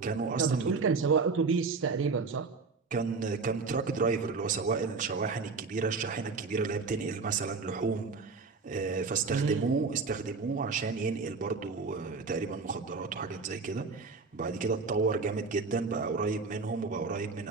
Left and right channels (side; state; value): left; quieter; 4.4 dB